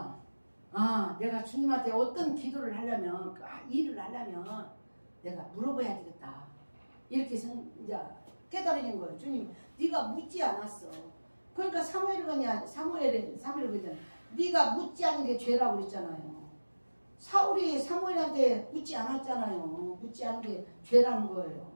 내가 주님한테 어떤 기도를 하려면 일을 하려면 내가 물어봐야 되겠다. 이렇게 이제 깨달은 거예요. 주님 네가 묻지 않았어. 그러니까 사무엘이 그랬잖아요. 네가 묻지 않은 게 죄라고 그랬잖아요. 사울이 사무엘한테 묻지 않았잖아요. 묻지 않은 게 죄라는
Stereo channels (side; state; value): both; inverted; correlation -1.00